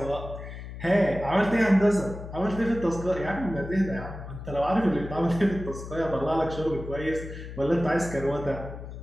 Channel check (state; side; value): noise; left; hum, 11 dB below the sound